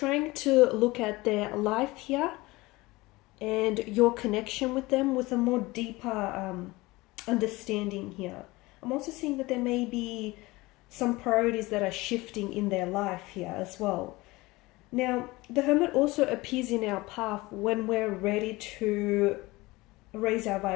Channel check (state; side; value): quieter; right; 21.2 dB